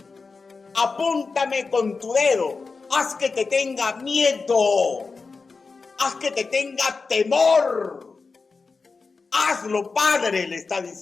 Apúntame con tu dedo. Haz que te tenga miedo. Haz que te tenga temor. Hazlo, Padre, le está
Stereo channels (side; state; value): right; quieter; 4.4 dB